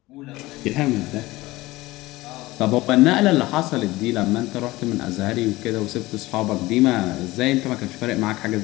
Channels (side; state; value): right; quieter; 19.3 dB